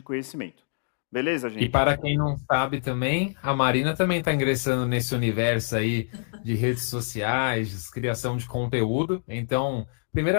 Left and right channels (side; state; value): right; silent; digital silence